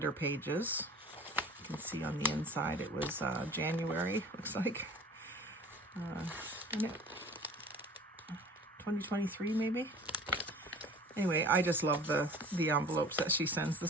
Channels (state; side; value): normal; both; correlation 0.44